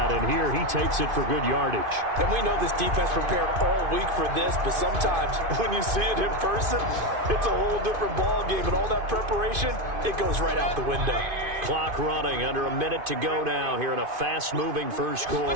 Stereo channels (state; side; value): late; left; 2.5 ms